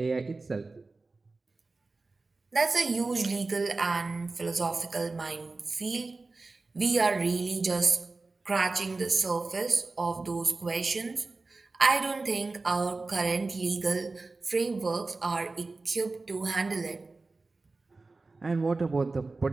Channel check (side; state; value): left; quieter; 3.6 dB